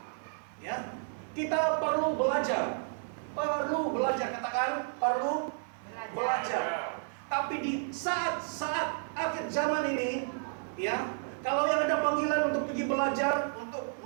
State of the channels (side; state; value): left; silent; digital silence